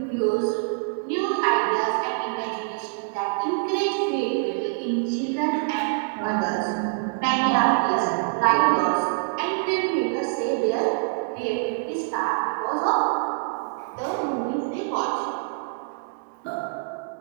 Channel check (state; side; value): silent; left; digital silence